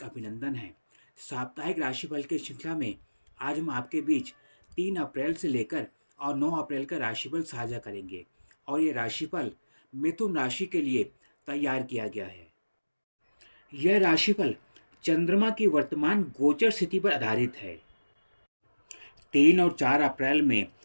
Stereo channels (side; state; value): both; inverted; correlation -1.00